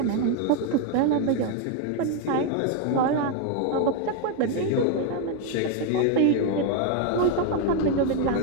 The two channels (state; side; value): different; both; correlation 0.01